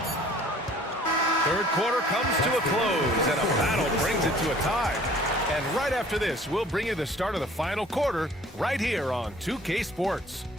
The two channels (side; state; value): both; normal; correlation 0.53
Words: Third quarter comes to a close, and a battle brings it to a tie. And right after this, we'll bring you the start of the final quarter right here on 2K Sports.